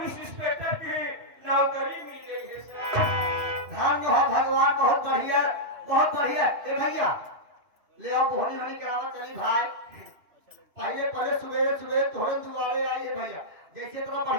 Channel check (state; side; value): late; left; 2.9 ms